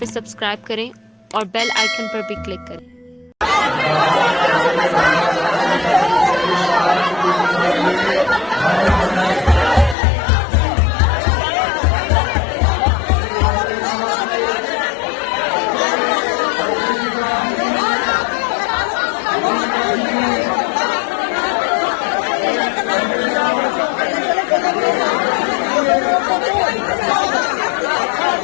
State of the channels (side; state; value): right; drops out; at 10.0 s